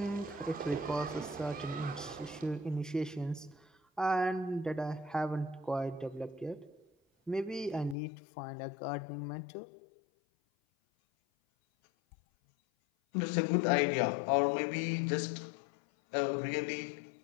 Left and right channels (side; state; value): right; drops out; at 8.0 s